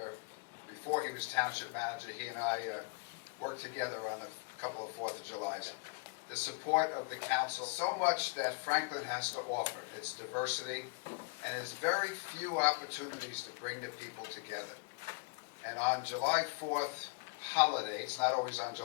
Before he was Township Manager, he and I worked together on a couple of 4th of Julys. The support of the council, so much that Franklin has to offer. Its diversity, and its very few opportunities to bring the people together. And on July 4th holiday, it's not always on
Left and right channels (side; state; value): right; quieter; 30.7 dB